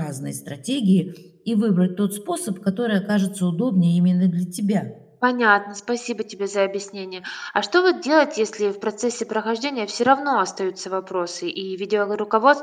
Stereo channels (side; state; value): both; identical; correlation 1.00